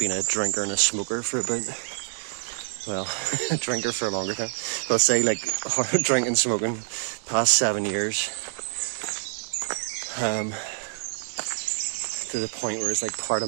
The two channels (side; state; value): left; silent; digital silence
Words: been a drinker and a smoker for about, well, a drinker for a longer time. I'll say like drinking, smoking, past 7 years. To the point where it's like part